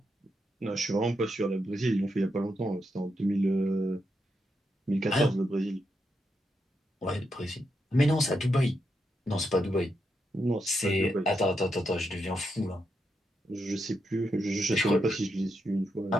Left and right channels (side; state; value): both; normal; correlation 0.83